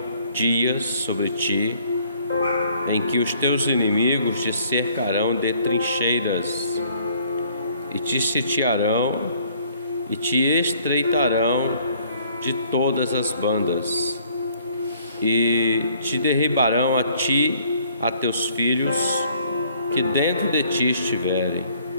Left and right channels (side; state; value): both; inverted; correlation -0.61